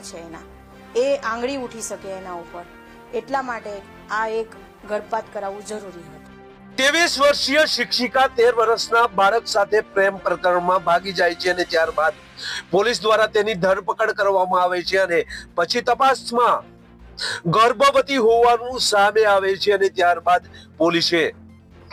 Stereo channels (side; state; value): both; identical; correlation 1.00